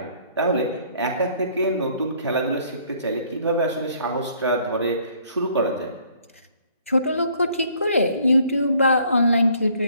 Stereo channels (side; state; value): both; inverted; correlation -0.60